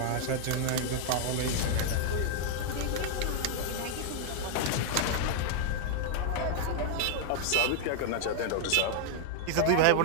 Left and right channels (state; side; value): different; both; correlation 0.00